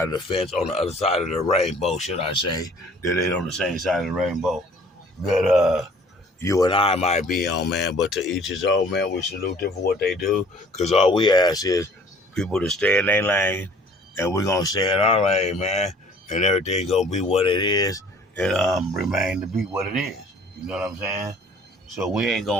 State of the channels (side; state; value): both; normal; correlation 0.53